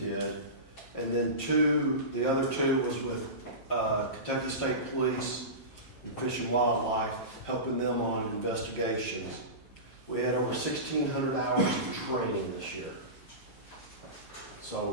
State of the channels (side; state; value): right; late; 8.1 ms